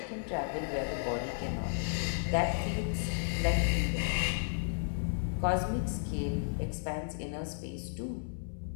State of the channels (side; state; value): right; silent; 55 dB below the other